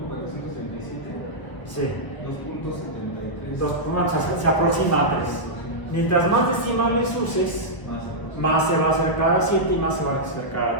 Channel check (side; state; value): right; late; 1.2 ms